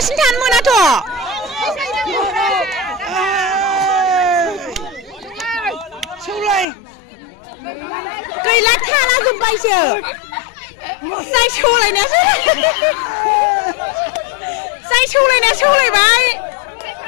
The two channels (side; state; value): right; drops out; at 6.7 s